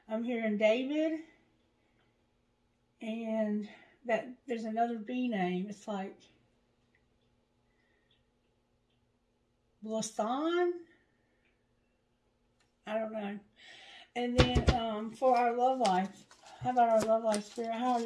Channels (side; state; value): both; identical; correlation 1.00